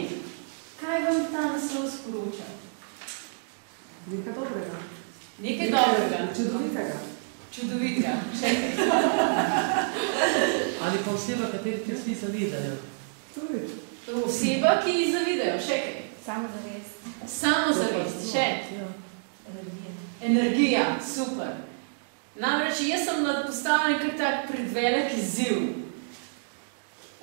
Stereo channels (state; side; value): silent; left; digital silence